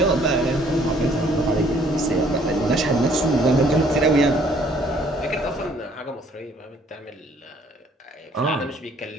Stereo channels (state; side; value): normal; both; correlation 0.61